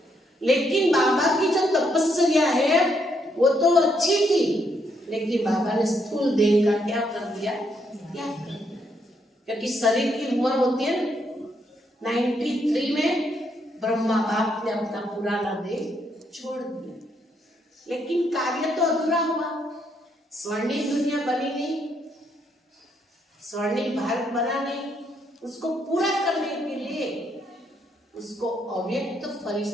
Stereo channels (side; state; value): both; normal; correlation 0.75